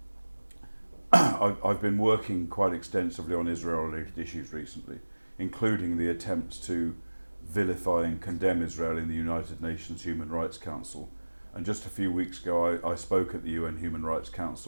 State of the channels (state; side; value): inverted; both; correlation -1.00